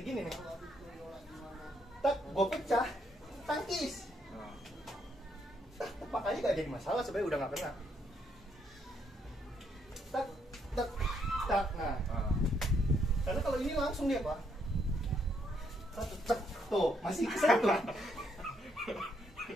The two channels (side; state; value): both; normal; correlation 0.73